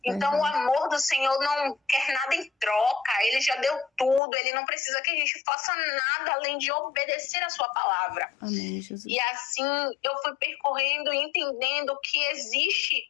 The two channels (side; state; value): right; drops out; at 4.2 s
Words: Então o amor do Senhor não quer nada em troca, ele já deu tudo, ele não precisa que a gente faça nada além de obedecer a sua palavra. Amém, Jesus. E assim eu fui percorrendo e entendendo que